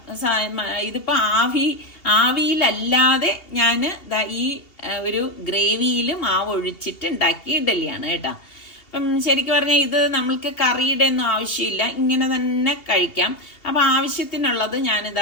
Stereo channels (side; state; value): right; late; 2.8 ms